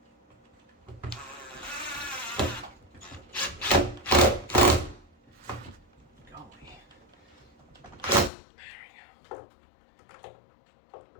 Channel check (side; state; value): right; drops out; at 8.3 s